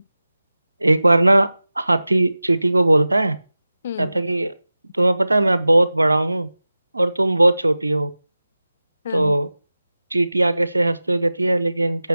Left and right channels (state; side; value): inverted; both; correlation -0.96